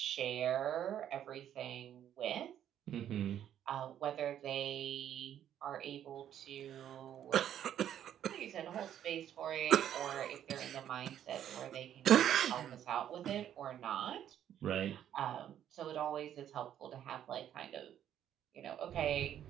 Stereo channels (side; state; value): left; quieter; 10.5 dB